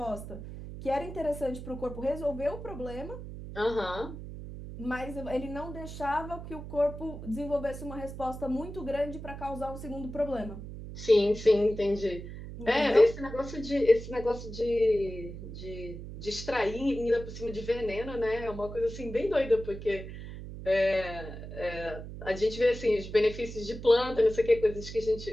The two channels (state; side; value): noise; right; hum, 10 dB below the sound